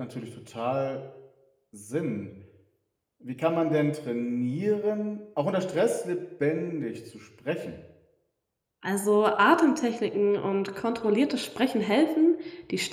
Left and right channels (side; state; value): both; identical; correlation 1.00